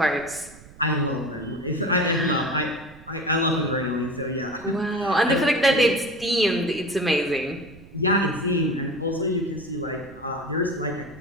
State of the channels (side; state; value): right; noise; rumble, 21 dB below the sound